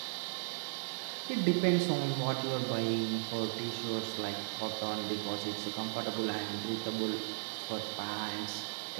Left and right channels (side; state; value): left; silent; digital silence